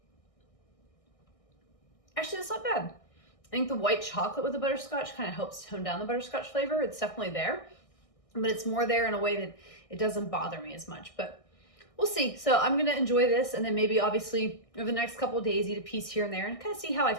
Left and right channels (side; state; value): right; late; 1.6 ms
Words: Actually, that's not bad. I think the white chocolate with the butterscotch kind of helps tone down the butterscotch flavor. It's definitely there, but it's more there in a way that it doesn't bother me as much, but we'll see. So I'm gonna enjoy this, and then maybe obviously over the next couple of days eat a piece here and there and kind of see how I